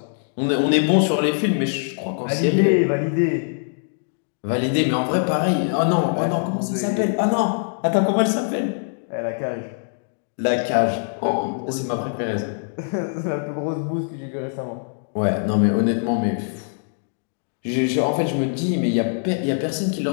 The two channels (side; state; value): right; silent; digital silence